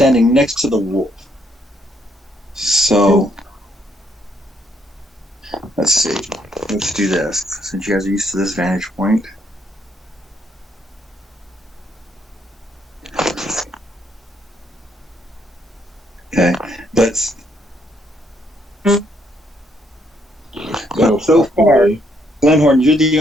next to the wolf. So let's see. Let's do this since you guys are used to this vantage point. Okay, but so far, Glenhorn, you're the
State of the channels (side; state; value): both; normal; correlation 0.72